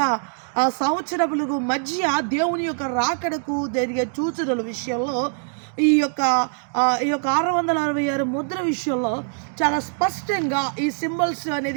సంవత్సరములకు మధ్య దేవుని యొక్క రాకడకు జరిగే సూచనల విషయంలో ఈ యొక్క 666 ముద్ర విషయంలో చాలా స్పష్టంగా ఈ సింబల్స్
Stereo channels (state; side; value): silent; left; 59 dB below the other